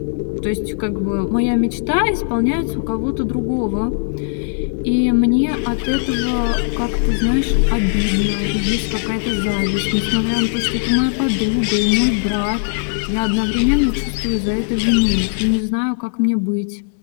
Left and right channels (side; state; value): right; silent; digital silence